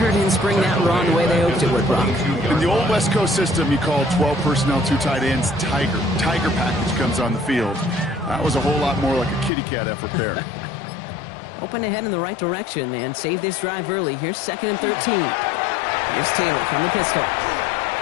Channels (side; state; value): right; drops out; at 9.5 s